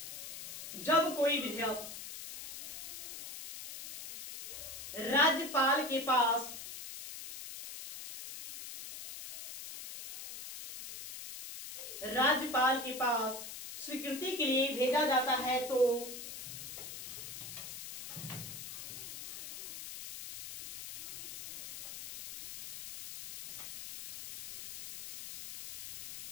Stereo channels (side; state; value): left; noise; hiss, 10 dB below the sound